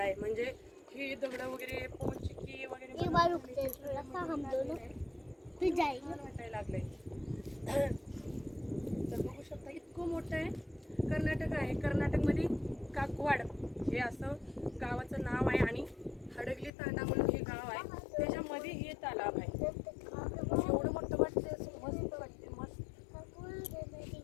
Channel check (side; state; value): right; drops out; at 16.7 s